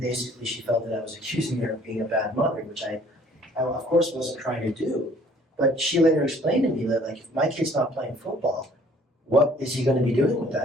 she felt that I was accusing her of being a bad mother, which I of course wasn't trying to do. But she later explained to me that, like, if my kid's not playing football, what is he going to be doing with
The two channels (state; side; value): normal; both; correlation 0.57